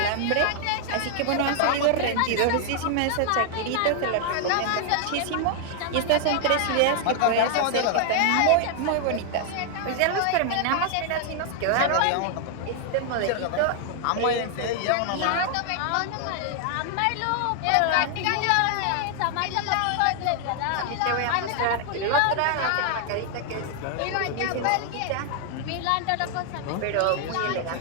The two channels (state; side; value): different; both; correlation 0.00